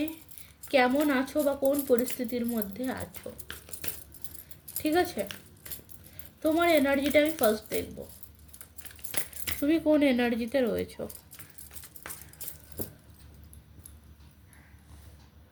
কেমন আছো বা কোন পরিস্থিতির মধ্যে আছো। ঠিক আছে, তোমার এনার্জিটা আমি ফার্স্ট দেখব, তুমি কোন এনার্জিতে রয়েছো।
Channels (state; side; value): identical; both; correlation 1.00